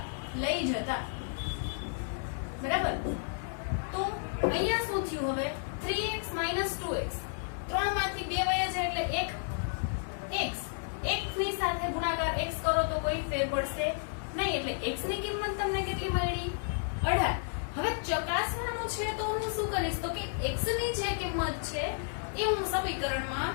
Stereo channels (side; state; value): right; silent; 56 dB below the other